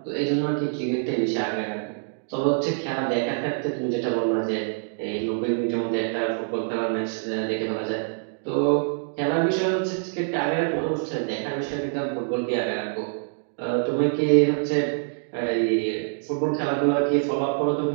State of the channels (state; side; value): silent; left; digital silence